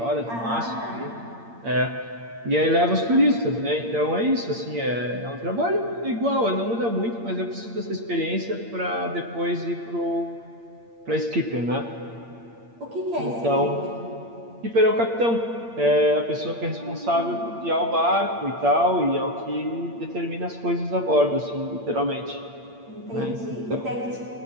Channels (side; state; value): left; late; 8.7 ms